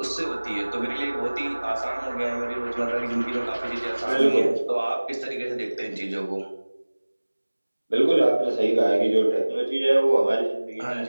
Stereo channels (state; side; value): inverted; both; correlation -1.00